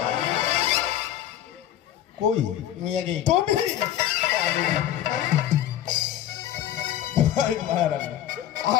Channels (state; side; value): quieter; right; 11.5 dB